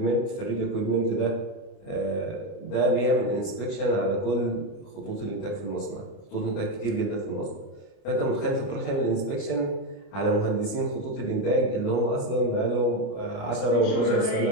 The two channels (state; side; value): late; right; 29 ms